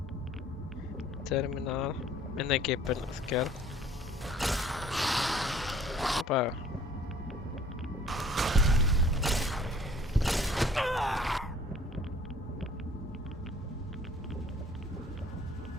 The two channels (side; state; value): both; normal; correlation 0.53